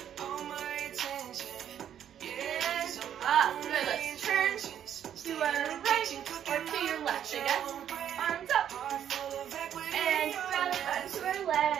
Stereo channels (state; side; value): quieter; left; 9.8 dB